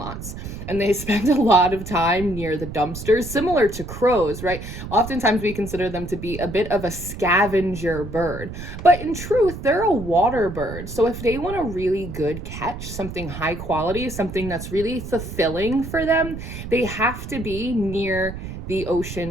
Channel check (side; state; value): right; noise; rumble, 9 dB below the sound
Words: and they spend a lot of time near the dumpsters, similar to crows, right? Oftentimes we consider them to be a bit of a scavenger bird, but in truth, they're a water bird. So if they want a really good catch, something high quality, something that's really fulfilling for them, they have to be near the